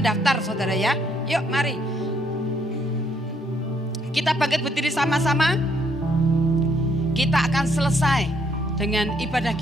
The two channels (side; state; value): both; normal; correlation 0.70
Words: saudara ya. Yuk mari. Kita bangkit berdiri sama-sama. Kita akan selesai dengan ibadah